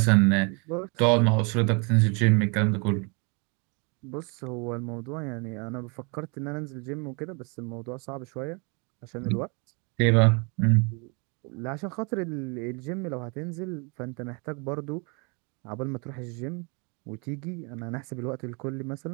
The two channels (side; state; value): left; quieter; 33.0 dB